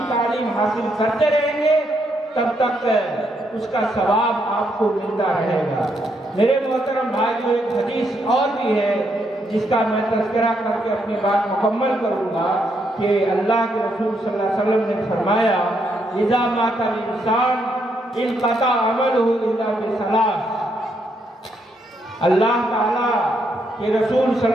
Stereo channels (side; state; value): both; normal; correlation 0.76